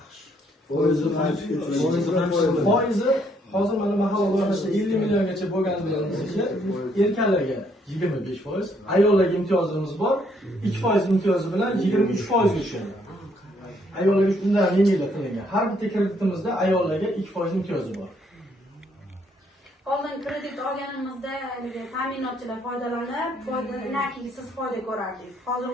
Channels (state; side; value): normal; both; correlation 0.69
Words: Foizi hozir mana mahalla loyihasida 50 milliongacha bo'lgani bilan erkaklarga 25%, ayollarga imtiyozimiz bor. 2% imtiyozi bilan 23% ga tushadi. Ayollarga undan yengillik qilingan. Har bitta kreditimizda ayollarga 2% imtiyozi bor. Oldin kredit olganimizda ta'minotchilar foydalanib, foydalanaki siz foyda ko'rardingiz. Hozir